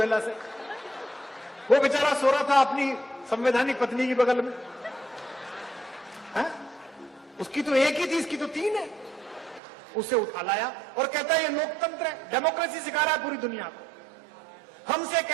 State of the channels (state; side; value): drops out; left; at 9.6 s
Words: से। वो बेचारा सो रहा था अपनी संवैधानिक पत्नी की बगल में है? उसकी तो एक ही थी, इसकी तो 3 है। उसे उठा लाया और कहता है ये लोकतंत्र है, डेमोक्रेसी सिखा रहा है पूरी दुनिया को। हमसे